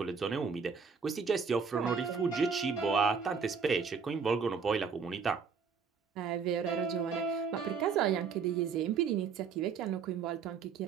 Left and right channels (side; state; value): left; quieter; 5.8 dB